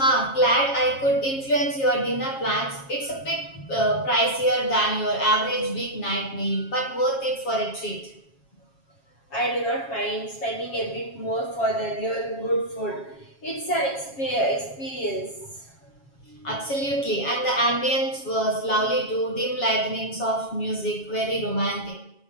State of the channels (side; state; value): right; late; 7.3 ms